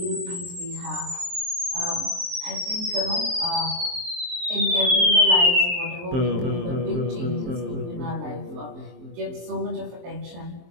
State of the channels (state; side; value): late; left; 23 ms